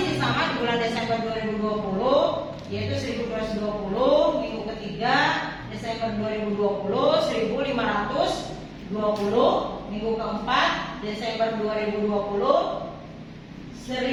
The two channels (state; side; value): identical; both; correlation 1.00